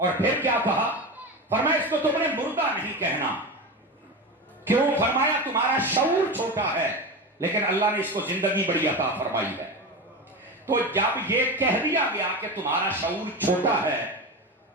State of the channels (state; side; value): normal; both; correlation 0.23